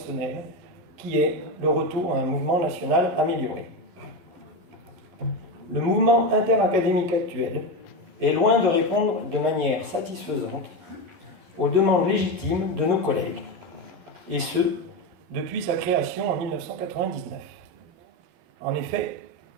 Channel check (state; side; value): late; left; 12 ms